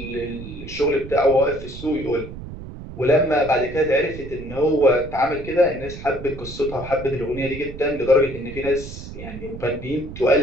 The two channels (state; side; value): noise; right; rumble, 12 dB below the sound